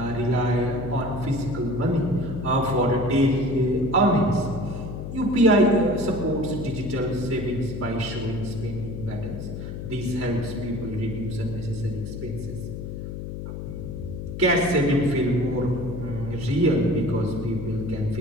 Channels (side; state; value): left; noise; hum, 7 dB below the sound